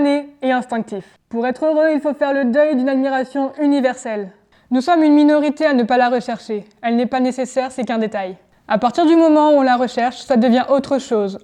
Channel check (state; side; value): identical; both; correlation 1.00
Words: et instinctif. Pour être heureux, il faut faire le deuil d'une admiration universelle. Nous sommes une minorité à ne pas la rechercher. Elle n'est pas nécessaire, c'est qu'un détail. À partir du moment où on la recherche, ça devient autre chose,